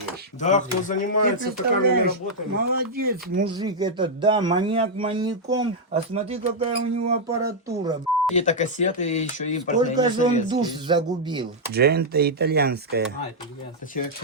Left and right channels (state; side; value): normal; both; correlation -0.04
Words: вещь. Да, кто Ты занимается такими представляешь, работами. молодец, мужик этот, да, маньяк маньяком, а смотри, какая у него аппаратура. Какие-то кассеты еще импортные. Сколько не же он советские. душ загубил. Джента итальянская. А, это итальянский. Человек